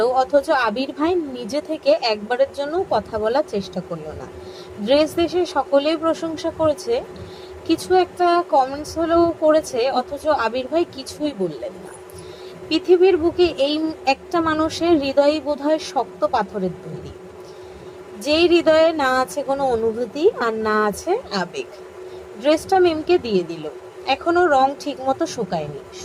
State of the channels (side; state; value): both; identical; correlation 1.00